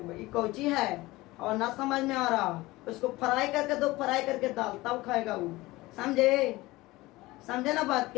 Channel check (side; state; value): right; quieter; 19.8 dB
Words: भाई कौची है, और ना समझ में आ रहा, उसको फ्राई करके दो, फ्राई करके दाल तब खाएगा वो, समझे ना बात